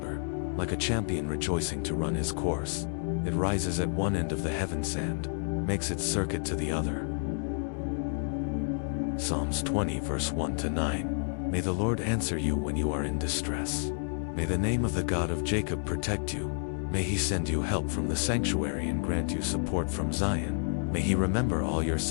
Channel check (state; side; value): silent; right; digital silence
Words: like a champion rejoicing to run his course. It rises at one end of the heaven sand, makes its circuit to the other. Psalms 20 verse 1 to 9. May the Lord answer you when you are in distress. May the name of the God of Jacob protect you. May he send you help from the sanctuary and grant you support from Zion. May he remember all your